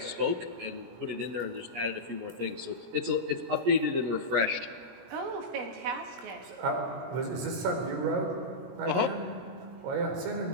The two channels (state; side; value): late; left; 17 ms